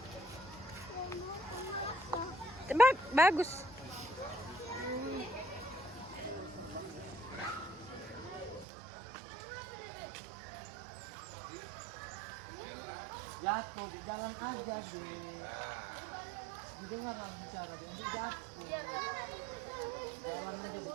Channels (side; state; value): left; drops out; at 8.7 s